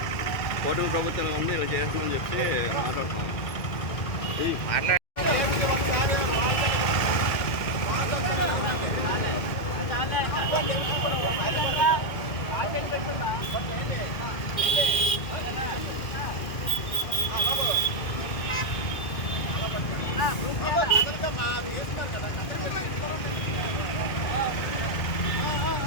కూటమి ప్రభుత్వం ఉంది ఇలా చేస్తుందని చెప్తే మాట్లాడుతున్నాం మాట్లాడ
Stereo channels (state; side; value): late; right; 2.1 ms